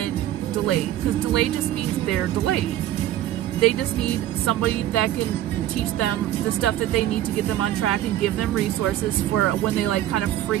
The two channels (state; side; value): quieter; left; 13.1 dB